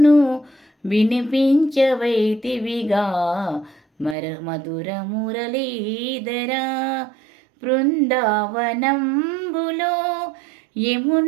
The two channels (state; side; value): drops out; left; at 4.2 s